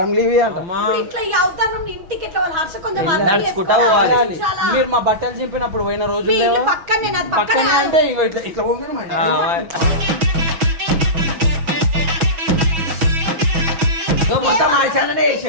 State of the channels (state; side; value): late; left; 6.2 ms